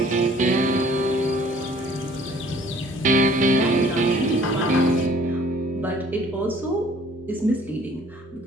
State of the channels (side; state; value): both; normal; correlation 0.55